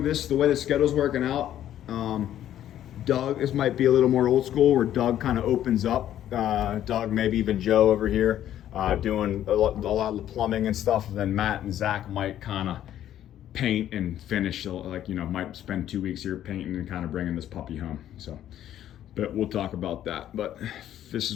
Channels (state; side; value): quieter; right; 11.6 dB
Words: the way the schedule's working out, Doug, this might be a little more old school, where Doug kind of opens up. Doug, maybe even Joe over here, doing a lot of the plumbing and stuff. And then Matt and Zach might kind of paint and finish, like, you know, might spend 2 weeks here painting and kind of bringing this puppy home. So, but we'll talk about that. But this